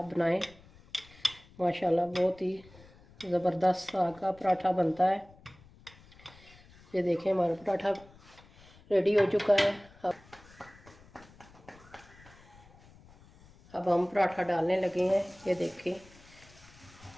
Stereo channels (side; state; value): left; noise; rumble, 24 dB below the sound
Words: बनाएं। माशाल्लाह बहुत ही ज़बरदस्त साग का पराठा बनता है। ये देखें, हमारा पराठा रेडी हो चुका है। अब हम पराठा डालने लगे हैं। ये देखें